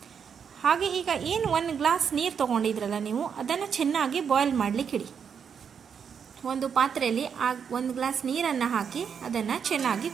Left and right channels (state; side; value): quieter; left; 7.0 dB